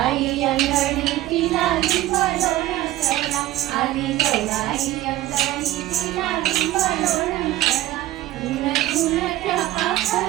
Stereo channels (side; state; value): left; quieter; 15.4 dB